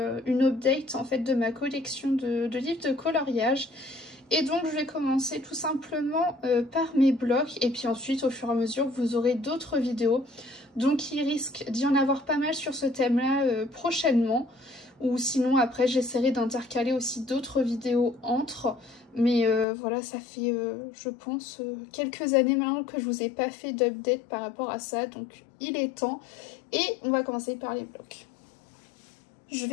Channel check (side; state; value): right; drops out; at 19.7 s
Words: une update en fait de ma collection de livres de coloriage. Et donc je vais commencer tout simplement par mes blocs et puis ensuite au fur et à mesure vous aurez d'autres vidéos. Donc il risque d'y en avoir pas mal sur ce thème là prochainement. Ou sinon après j'essaierai d'intercaler aussi d'autres vidéos entre. Mais voilà, ça fait je pense quelques années maintenant que je vous ai pas fait d'update par rapport à ça. Donc il est temps. Et on va commencer par les blocs. Je